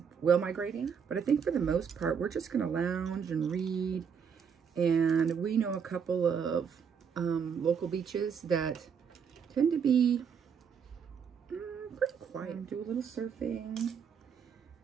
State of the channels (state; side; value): quieter; left; 6.9 dB